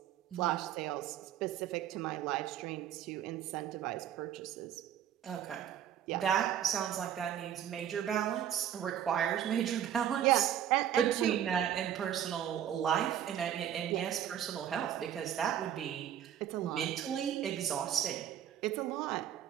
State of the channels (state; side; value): quieter; left; 10.2 dB